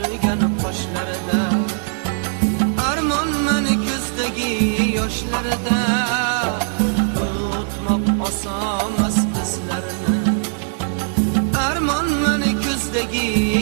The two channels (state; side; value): silent; left; digital silence